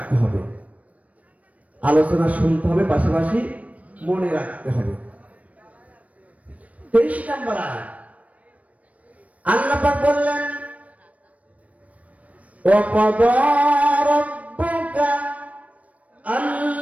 হবে, আলোচনা শুনতে হবে, পাশাপাশি মনে রাখতে হবে। 23 নম্বর আয়াত আল্লাহ পাক বললেন, ওয়াকাদা রাব্বুকা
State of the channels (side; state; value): left; late; 0.068 ms